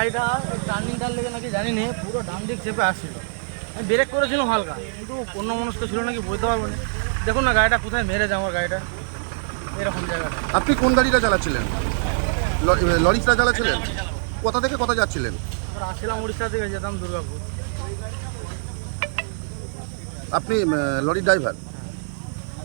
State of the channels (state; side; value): silent; left; 58 dB below the other